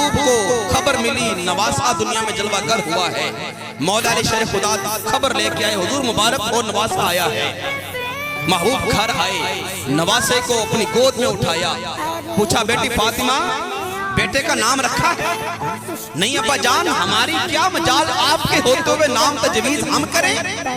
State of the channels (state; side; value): identical; both; correlation 1.00